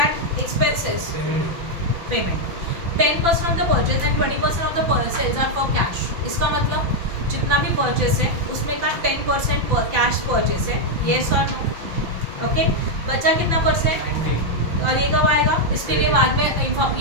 expenses payment. 10% of the purchase and 20% of the sales are for cash. इसका मतलब जितना भी परचेस है उसमें का 10% कैश परचेस है, येस और नो? ओके, बचा कितना परसेंट? और ये कब आएगा? इसके लिए बाद में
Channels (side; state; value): left; late; 5.9 ms